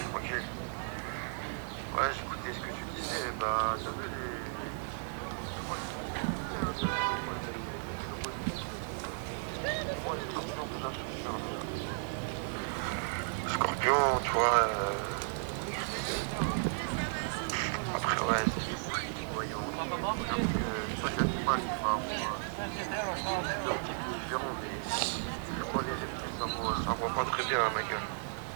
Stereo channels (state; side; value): silent; left; digital silence